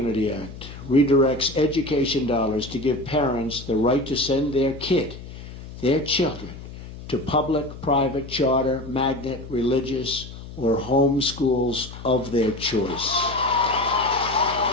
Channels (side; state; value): left; noise; hum, 13 dB below the sound